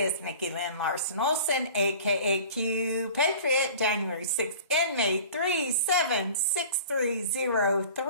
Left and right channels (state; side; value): inverted; both; correlation -0.42